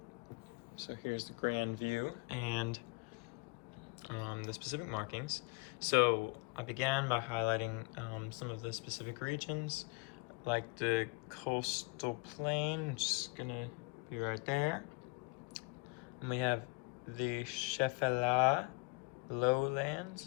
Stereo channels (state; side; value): quieter; right; 30.3 dB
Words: So here's the grand view and the specific markings. So I began by highlighting some of the specific regions, like the coastal plain, which is gonna be right there. And we have the Shefela